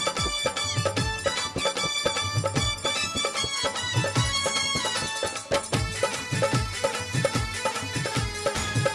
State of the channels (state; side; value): identical; both; correlation 1.00